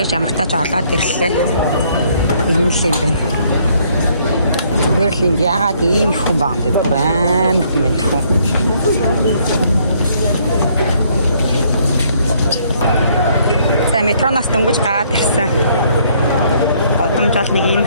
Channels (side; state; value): both; inverted; correlation -0.66